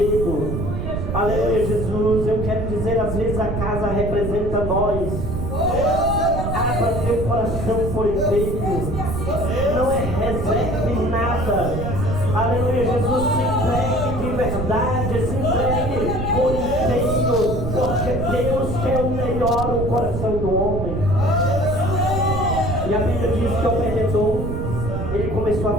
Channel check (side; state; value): right; noise; rumble, 3 dB below the sound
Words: Aleluia, Jesus. Eu quero dizer, às vezes a casa representa nós. Abra teu coração por inteiro. Não é reserva em nada. Aleluia, Jesus. Se entregue de verdade, se entregue por inteiro, porque Deus quer o melhor no coração do homem. E a Bíblia diz que Obed-edom, ele começou a